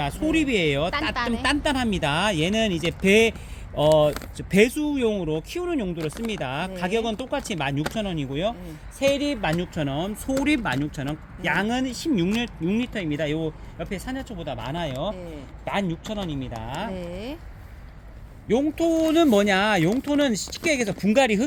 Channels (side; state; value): both; identical; correlation 1.00